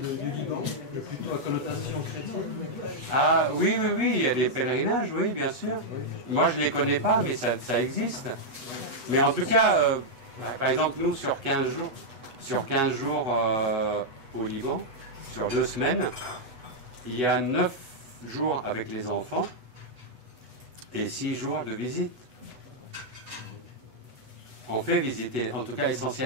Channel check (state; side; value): late; left; 8.1 ms